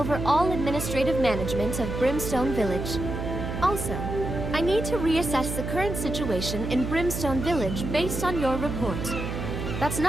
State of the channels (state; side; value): noise; right; hum, 4 dB below the sound